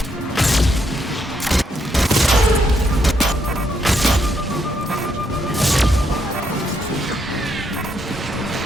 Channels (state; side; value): normal; both; correlation 0.76